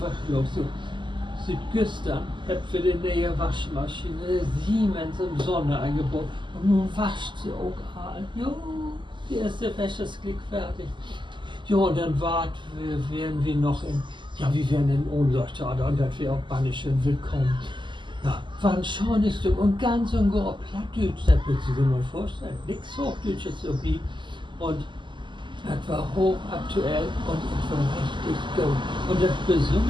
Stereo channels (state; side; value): late; left; 0.23 ms